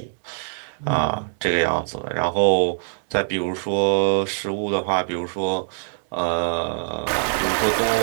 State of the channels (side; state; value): left; silent; digital silence